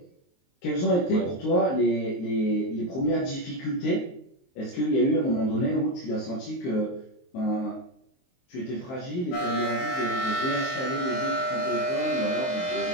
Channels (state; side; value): late; right; 23 ms